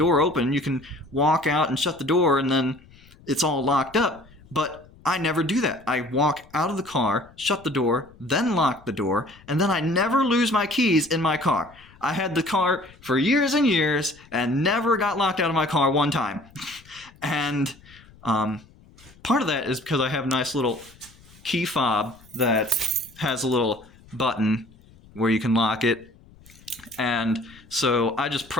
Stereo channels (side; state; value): left; noise; rumble, 25 dB below the sound